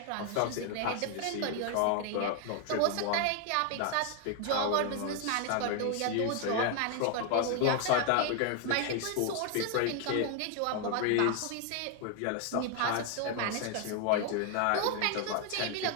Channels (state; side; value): different; both; correlation 0.00